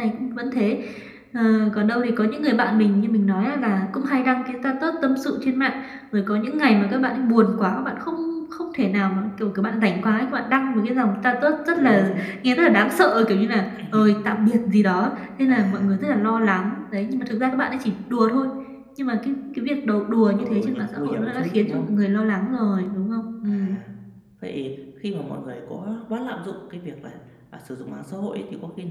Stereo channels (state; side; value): identical; both; correlation 1.00